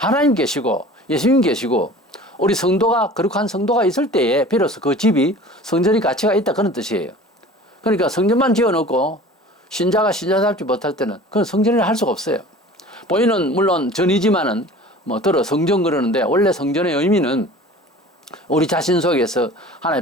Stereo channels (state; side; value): normal; both; correlation 0.43